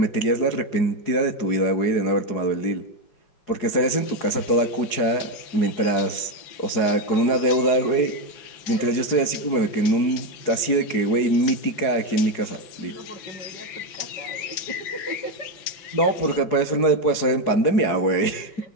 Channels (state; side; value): late; right; 4.8 ms